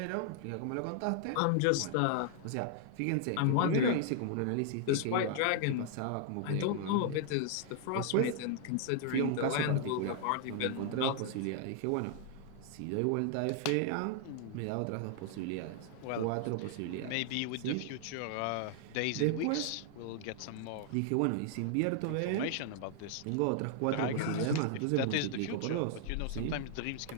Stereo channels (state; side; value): different; both; correlation 0.00